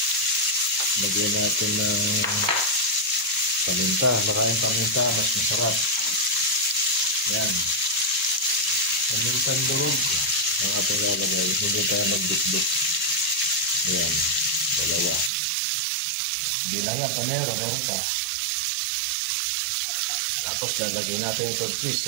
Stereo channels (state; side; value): drops out; left; at 15.3 s